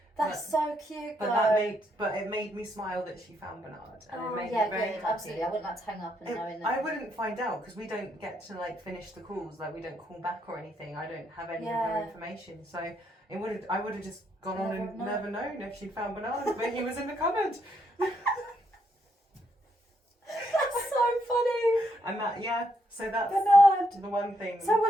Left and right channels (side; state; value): both; normal; correlation 0.76